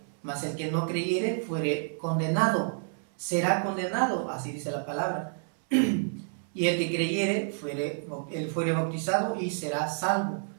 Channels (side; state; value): left; silent; 58 dB below the other